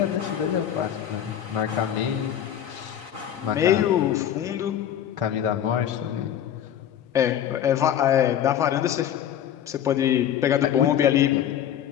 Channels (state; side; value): quieter; right; 10.2 dB